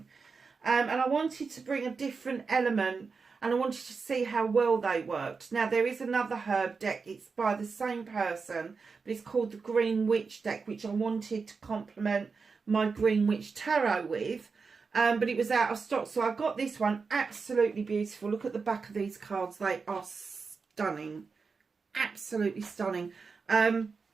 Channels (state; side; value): quieter; left; 4.9 dB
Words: And I wanted to bring a different element and I wanted to see how well they worked. Now, there is another herb deck. It's by the same person, but it's called the Green Witch deck, which I wanted to complement my Green Witch Tarot with. But it was out of stock, so I got this one. Absolutely beautiful. Look at the back of these cards. They are stunning. Absolutely stunning. And